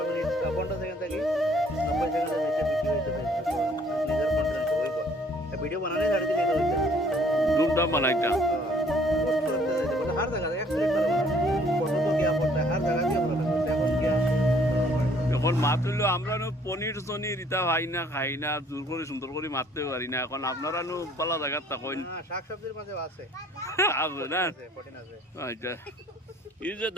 वीडियो बनाने झाड़ी दिले तो धूमधाम बनाइता हर जगह एक प्लेट पर फोटो तो क्या पड़ता है हर जगह क्या बोला এখন क्या এখন মাত্রলো আমরা নো পনির সনির ইতা ভাই না খাই না জোর করে সুন্দর করে মারতে পারি না এখন আপনারা নো পালা জায়গা তাকইন শাক সবজির মাঝে আছে আছে না প্রোটিন আছে আচ্ছা এই যে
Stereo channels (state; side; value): normal; both; correlation 0.60